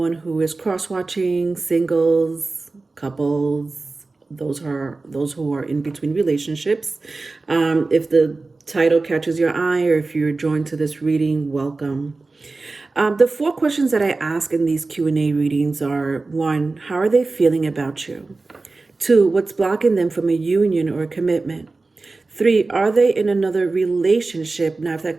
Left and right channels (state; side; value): quieter; left; 3.6 dB